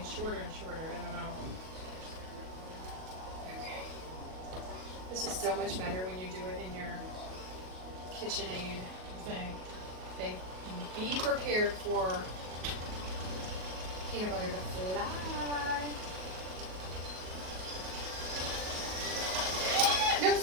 shorter and shorter. I don't know. Okay. This is so much better when you do it in your KitchenAid thing. Okay. Be prepared for peanut butter to fly. No,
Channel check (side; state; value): left; late; 38 ms